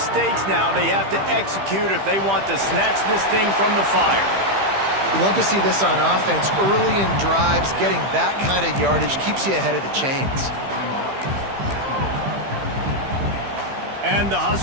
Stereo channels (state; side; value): late; left; 15 ms